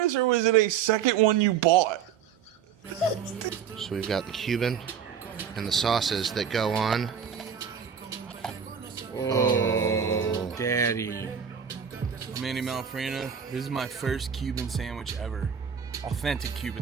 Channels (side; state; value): left; quieter; 7.6 dB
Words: or was it a second one you bought? So we've got the Cuban and the sauces that go on. Oh, Daddy. I'm Andy Malfrina. This is my first Cuban sandwich ever. Authentic